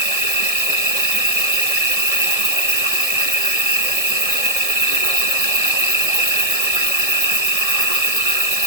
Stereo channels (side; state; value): left; late; 1.6 ms